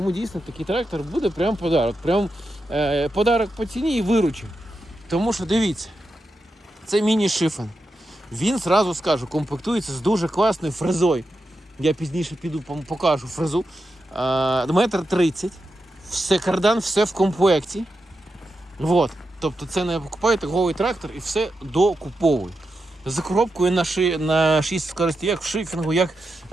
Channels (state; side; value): normal; both; correlation 0.88